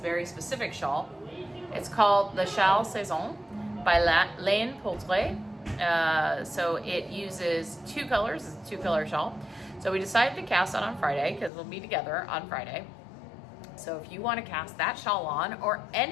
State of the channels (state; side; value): drops out; right; at 11.5 s